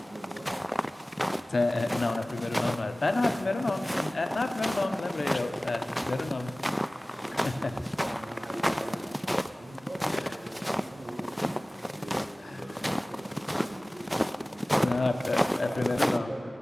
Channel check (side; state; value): both; normal; correlation 0.98